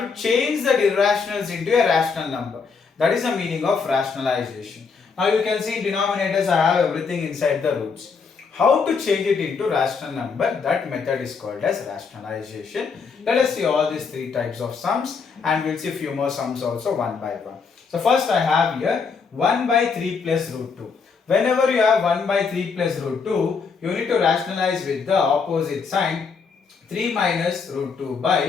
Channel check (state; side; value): quieter; right; 5.4 dB